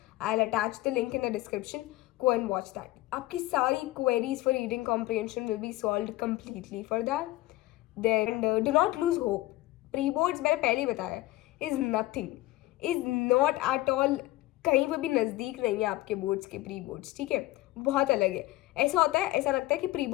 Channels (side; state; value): right; quieter; 17.6 dB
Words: I will attach the link in the description. Go and watch that. आपकी सारी queries for reading comprehension will be solve completely for that. Then do not lose hope. Pre boards मैंने पहले ही बताया, is nothing, is not at all, कहीं पर भी नज़दीक नहीं है आपके बोर्ड्स के प्री बोर्ड्स. ठीक है, बहुत अलग है. ऐसा होता है, ऐसा लगता है कि प्री